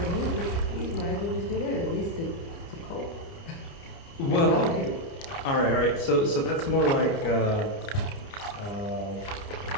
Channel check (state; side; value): late; right; 29 ms